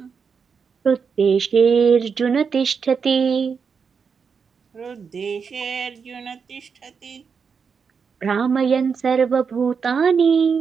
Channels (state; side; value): quieter; left; 6.0 dB